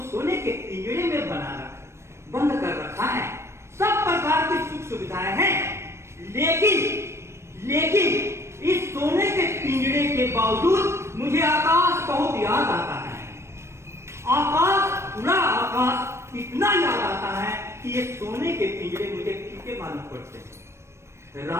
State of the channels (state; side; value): late; left; 0.13 ms